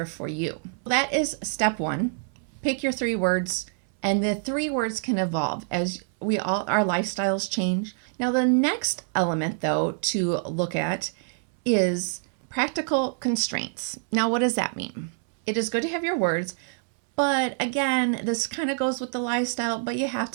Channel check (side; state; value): left; silent; 60 dB below the other